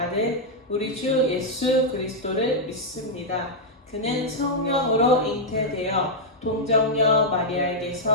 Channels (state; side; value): normal; both; correlation -0.04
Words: 우리 주 예수 그리스도를 믿습니다. 그는 성령으로 잉태되어 동정녀